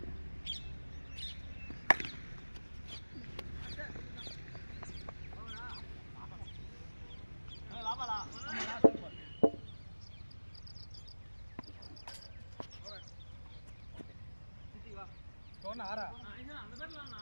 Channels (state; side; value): inverted; both; correlation -1.00